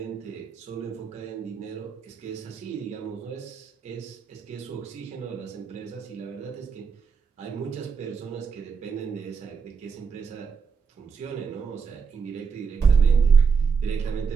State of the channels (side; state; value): left; quieter; 5.8 dB